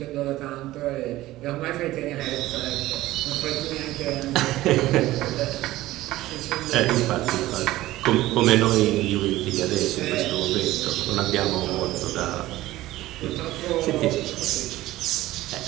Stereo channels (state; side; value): quieter; left; 16.5 dB